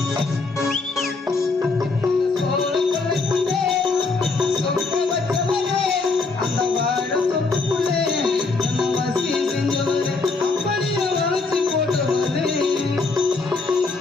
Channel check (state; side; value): quieter; right; 3.9 dB